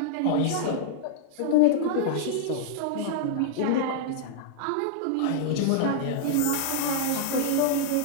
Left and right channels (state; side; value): different; both; correlation -0.01